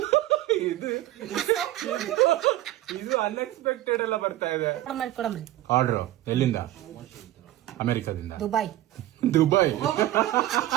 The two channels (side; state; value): left; quieter; 15.0 dB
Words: ಇದು ಅನ್ಎಕ್ಸ್ಪೆಕ್ಟೆಡ್ ಎಲ್ಲ ಬರ್ತಾ ಇದೆ. ಕೊಡಮ್ರಿ. ಆರ್ಡರ್ ಎಲ್ಲಿಂದ? ಅಮೆರಿಕದಿಂದ. ದುಬೈ.